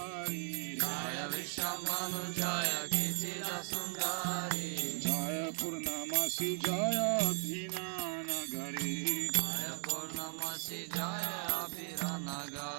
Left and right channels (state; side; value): silent; left; digital silence